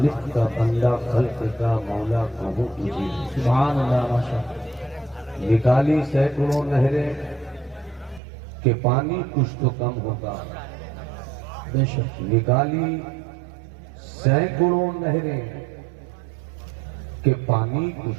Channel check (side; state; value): left; drops out; at 8.2 s